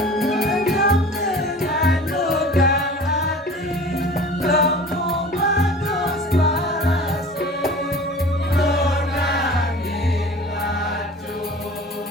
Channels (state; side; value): normal; both; correlation 0.41